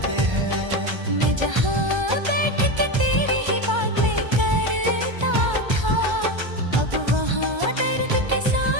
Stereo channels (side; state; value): left; late; 1.3 ms